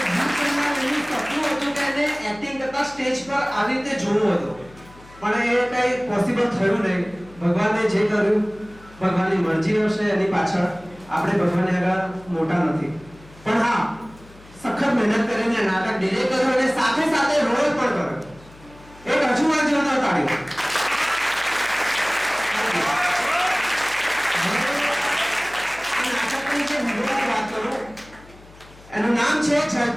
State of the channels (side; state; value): left; noise; hum, 23 dB below the sound